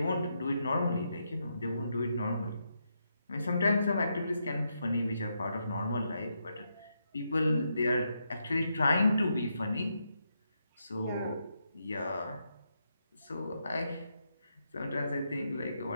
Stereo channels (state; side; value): inverted; both; correlation -0.81